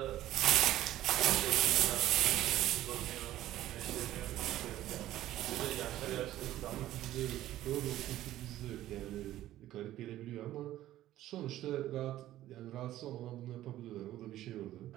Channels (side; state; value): left; quieter; 14.0 dB